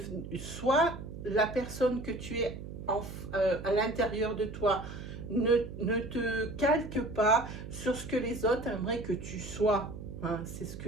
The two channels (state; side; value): noise; right; hum, 10 dB below the sound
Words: Sois la personne que tu es à l'intérieur de toi. Ne te calque pas sur ce que les autres aimeraient que tu sois. Hein. C'est ce